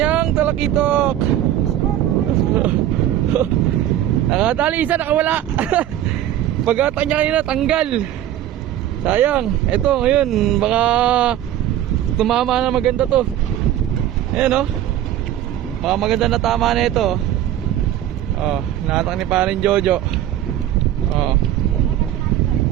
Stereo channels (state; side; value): quieter; left; 12.1 dB